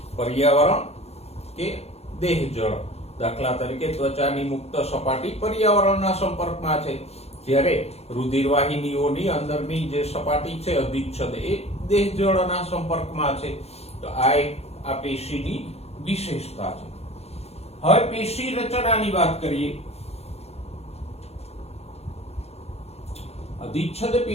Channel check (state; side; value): late; right; 0.30 ms